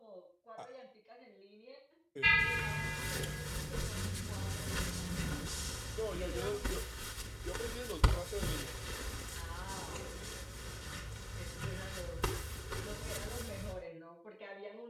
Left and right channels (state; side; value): identical; both; correlation 1.00